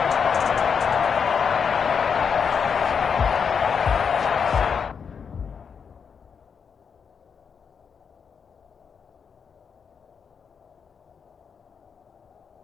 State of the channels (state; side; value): quieter; right; 6.5 dB